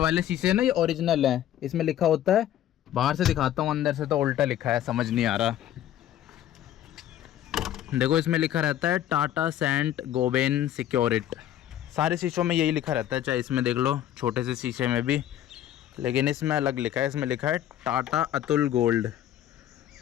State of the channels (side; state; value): right; quieter; 11.7 dB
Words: शीशे है ना, ये ओरिजिनल है, इसमें लिखा होता है, बाहर से दिखाता हूँ, अंदर से तो उल्टा लिखा है, समझ नहीं आ रहा। देखो इसमें लिखा रहता है टाटा सेंट गोबेन सिक्योरिट, सारे शीशों में यही लिखा रहता है, चाहे इसमें देख लो छोटे से शीशे में भी, लेकिन इसमें अलग लिखा है, इसमें लिखा है टाटा अतुल गोल्ड,